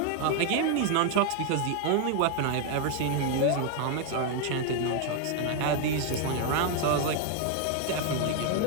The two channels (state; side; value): different; both; correlation 0.01